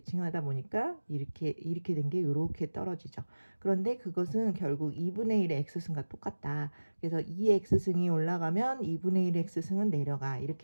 보니까 이렇게 된 게 이렇게 떨어지죠. 그런데 그것은 결국 2분의 1의 x승과 똑같다. 그래서 2의 x승이 올라가면 2분의 1의 x승은 내려가.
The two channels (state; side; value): inverted; both; correlation -1.00